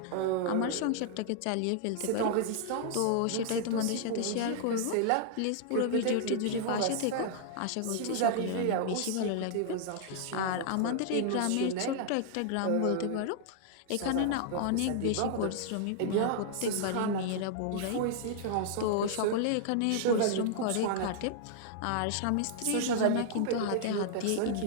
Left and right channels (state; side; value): different; both; correlation -0.01